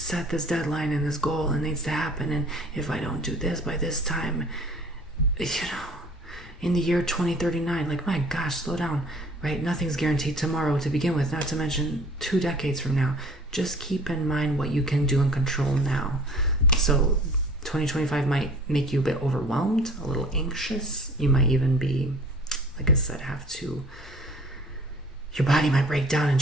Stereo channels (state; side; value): normal; both; correlation 0.49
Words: this deadline and this goal and it needs to happen, and if I don't do this by this time, you know, in the year 2039, like, my gosh, slow down, right? Nothing's guaranteed tomorrow to begin with, not to mention 2 decades from now. Just keep in mind what you can do and control now. So 2025 might make you a bit overwhelmed, a little anxious. You might even be, like I said, your body might break down and